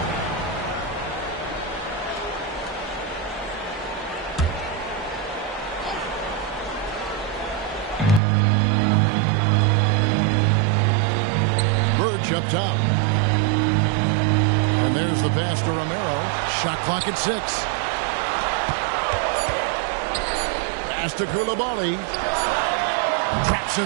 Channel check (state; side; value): drops out; left; at 8.2 s